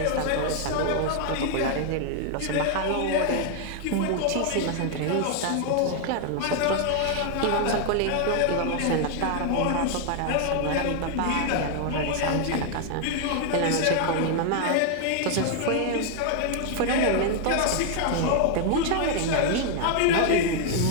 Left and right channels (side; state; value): both; different; correlation 0.00